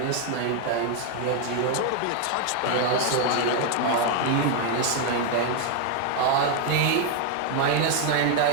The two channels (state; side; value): different; both; correlation 0.01